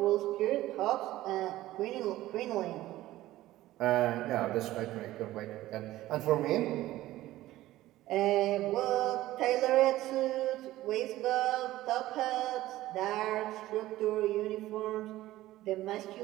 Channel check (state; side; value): quieter; left; 15.8 dB